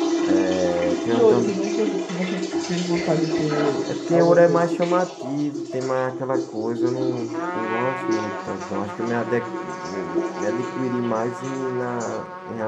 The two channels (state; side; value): identical; both; correlation 1.00